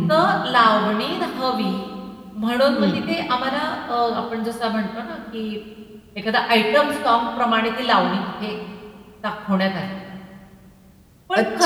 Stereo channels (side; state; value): both; identical; correlation 1.00